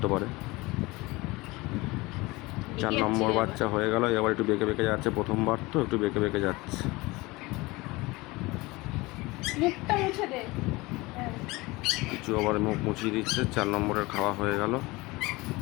পারে। 4 নম্বর বাচ্চা হয়ে গেল। এবার একটু বেঁকে বেঁকে যাচ্ছে, প্রথমবার তো একটু বেঁকে বেঁকে যাচ্ছে। কিছু আবার মুখ মুছিয়ে দিচ্ছে। 4 নম্বরের খাওয়া হয়ে গেল।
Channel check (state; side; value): quieter; right; 22.3 dB